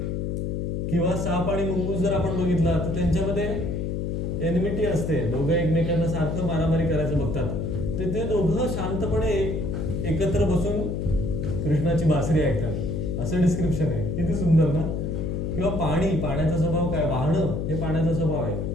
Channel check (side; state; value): left; noise; hum, 1 dB below the sound